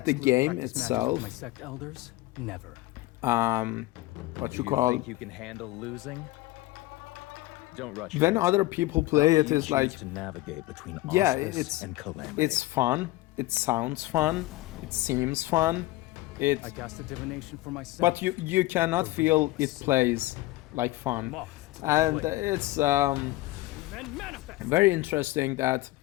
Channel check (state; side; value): quieter; right; 18.0 dB